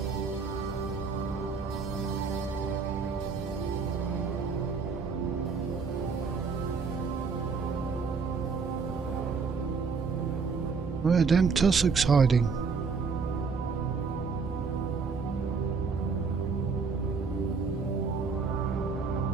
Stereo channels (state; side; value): quieter; left; 5.0 dB